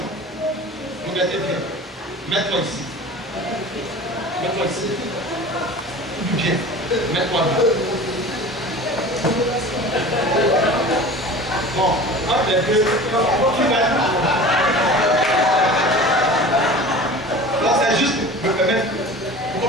Regardez bien. Mets-toi ici. Mets-toi ici. Bien. Mets-toi là. Bon, un des deux. Tu vas être. Là, c'est juste me permettre.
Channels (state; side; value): normal; both; correlation 0.38